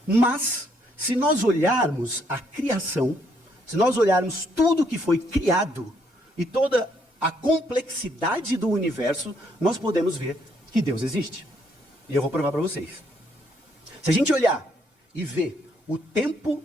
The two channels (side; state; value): both; normal; correlation 0.71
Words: Mas, se nós olharmos a criação, se nós olharmos tudo que foi criado e toda a complexidade do universo, nós podemos ver que Deus existe. E eu vou provar para vocês. Se a gente olhar e ver o tempo